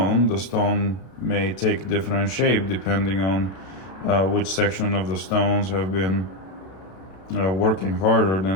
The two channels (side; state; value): right; late; 32 ms